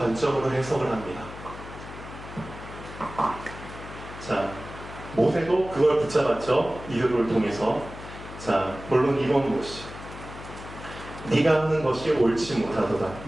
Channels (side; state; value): left; noise; hum, 13 dB below the sound